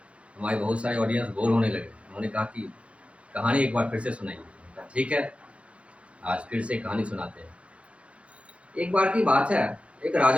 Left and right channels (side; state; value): left; late; 0.062 ms